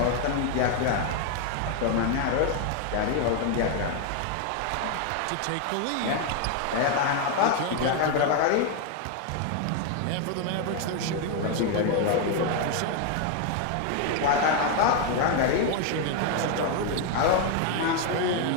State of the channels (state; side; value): different; both; correlation 0.01